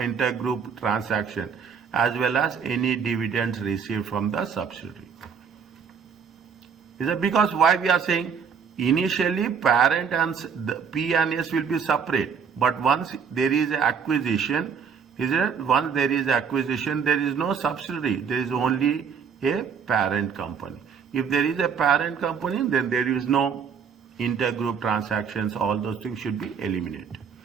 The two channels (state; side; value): quieter; left; 6.6 dB